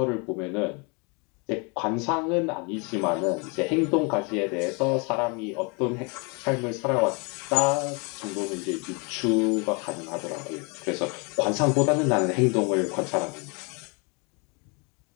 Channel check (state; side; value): quieter; right; 32.2 dB